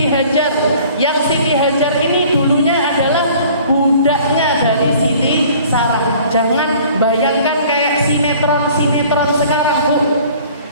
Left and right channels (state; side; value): inverted; both; correlation -0.51